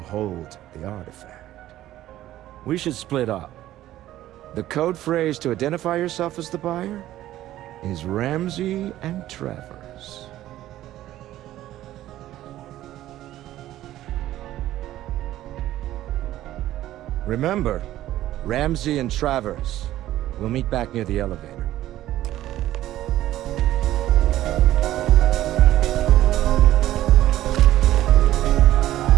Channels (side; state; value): left; quieter; 14.0 dB